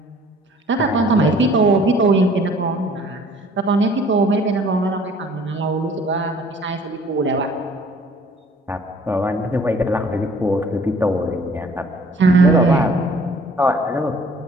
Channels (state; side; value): normal; both; correlation 0.54